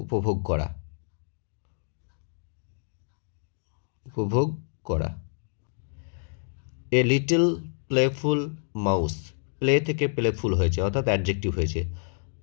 উপভোগ করা, উপভোগ করা। A little playful mouse, play থেকে প্লেফুল হয়েছে অর্থাৎ অ্যাডজেক্টিভ হয়েছে।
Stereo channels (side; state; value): right; silent; digital silence